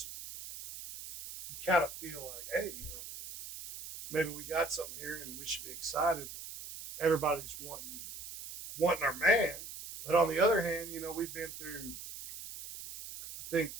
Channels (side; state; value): right; noise; hiss, 11 dB below the sound